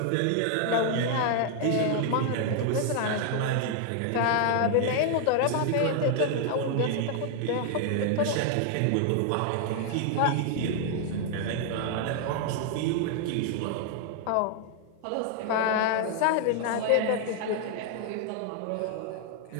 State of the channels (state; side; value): different; both; correlation 0.00